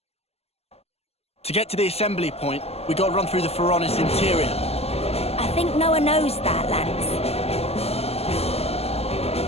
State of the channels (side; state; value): right; late; 0.29 ms